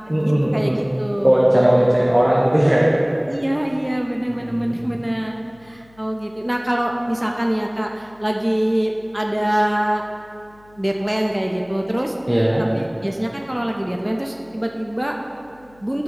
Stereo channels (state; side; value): noise; left; hum, 29 dB below the sound